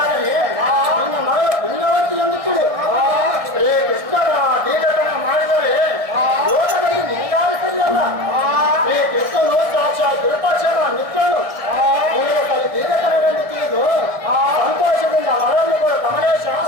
ನಿನ್ನ ಮಗಳ ಪುಣ್ಯವಂತಿ ಎಂದು ತಿಳಿ. ಶ್ರೀ ಕೃಷ್ಣನ ದೀರ್ಘತನ ಮಾಡಿದರೆ ಲೋಕದಲ್ಲಿ ನಿನಗಾದ ಸರಿಯಲ್ಲ. ಶ್ರೀ ಕೃಷ್ಣನು ಸಾಕ್ಷಾತ್ ವಿರೂಪಾಕ್ಷನ ಮಿತ್ರನು. ನಿನಗೆ ಕಲಿ ದೀರ್ಘತನವೆಂದು ತಿಳಿದು ಸಂತೋಷದಿಂದ ಮಗಳನ್ನು ಕೊಡು ಕಮಲೇಶ.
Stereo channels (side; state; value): left; late; 1.7 ms